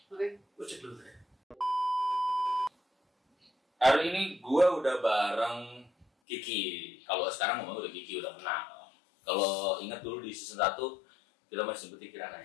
Oke. Gue cek dulu deh. Hari ini gue udah bareng Kiki. Kalau sekarang ngomong udah Kiki, udah kenal. Kalau ingat dulu di season 1 kita masih sebutin Kirana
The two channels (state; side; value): drops out; right; at 6.1 s